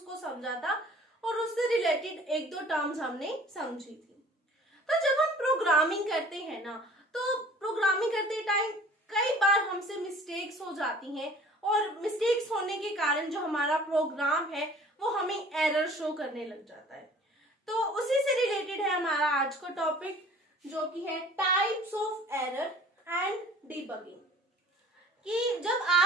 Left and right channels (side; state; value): both; normal; correlation 0.49